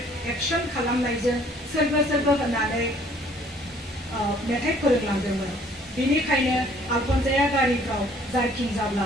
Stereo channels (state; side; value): normal; both; correlation 0.58